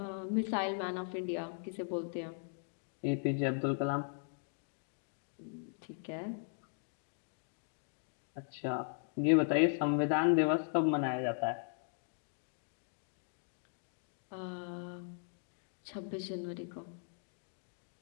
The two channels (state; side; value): silent; right; digital silence